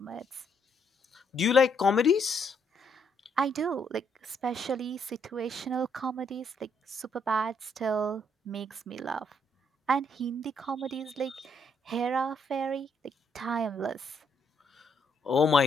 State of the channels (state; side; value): normal; both; correlation 0.72